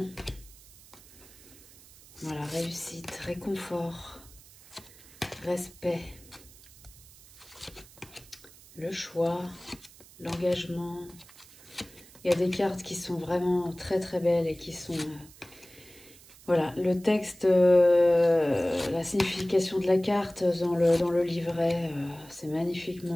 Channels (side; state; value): right; noise; hiss, 22 dB below the sound